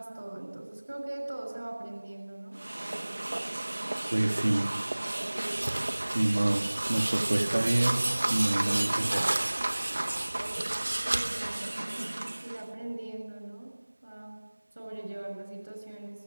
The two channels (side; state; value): both; inverted; correlation -1.00